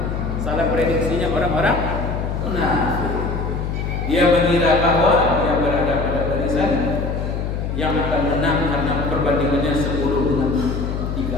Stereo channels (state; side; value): noise; left; hum, 3 dB below the sound